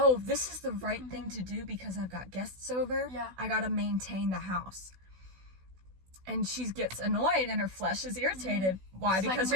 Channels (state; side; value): late; left; 16 ms